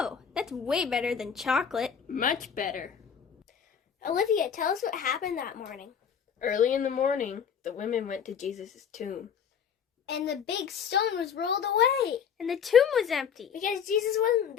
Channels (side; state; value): right; quieter; 7.5 dB